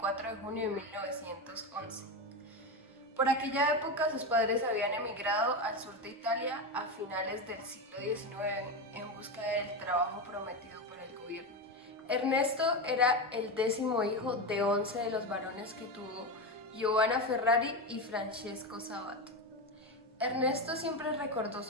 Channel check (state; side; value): normal; both; correlation 0.17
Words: de junio de 1911. Por aquella época sus padres habían emigrado al sur de Italia a finales del siglo XIX en busca del trabajo prometido por el gobierno. Ernesto era el 10º hijo de 11 de los varones que tuvo Giovanna Ferrari y Francesco Sabato. Ernesto siempre recordó